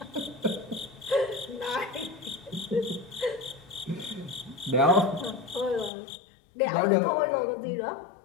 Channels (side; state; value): right; drops out; at 5.9 s